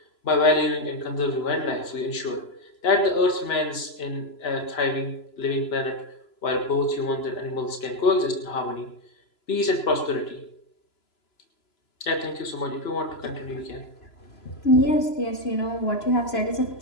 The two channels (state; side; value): late; right; 3.0 ms